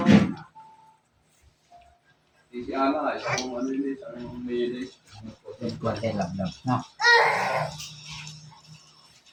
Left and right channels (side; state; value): both; identical; correlation 1.00